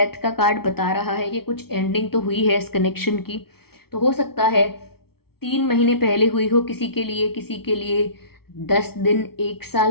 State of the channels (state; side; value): late; right; 0.95 ms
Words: का कार्ड बता रहा है कि कुछ एंडिंग तो हुई है इस कनेक्शन की, तो हो सकता है 3 महीने पहले हुई हो किसी के लिए 10 दिन 1